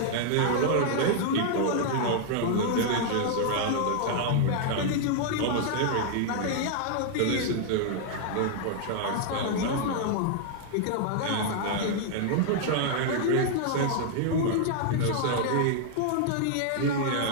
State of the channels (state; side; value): different; both; correlation -0.01